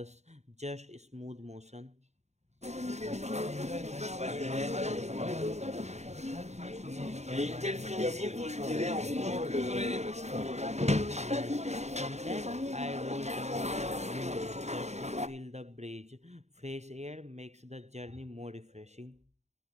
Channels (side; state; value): left; late; 0.32 ms